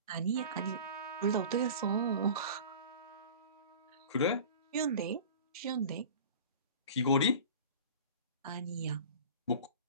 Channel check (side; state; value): both; inverted; correlation -0.38